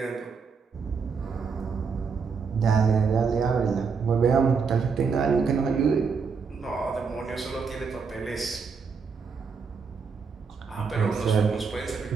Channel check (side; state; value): left; quieter; 5.5 dB